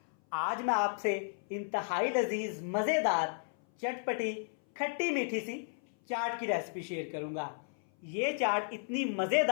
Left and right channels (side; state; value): right; silent; 55 dB below the other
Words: आज मैं आपसे इंतहाई लजीज मज़ेदार चटपटी खट्टी मीठी सी चाट की रेसिपी शेयर करूंगा। ये चाट इतनी